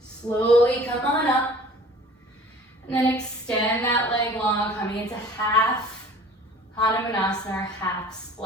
Slowly come on up, and then extend that leg long, coming into half Hanumanasana, or half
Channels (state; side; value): normal; both; correlation 0.47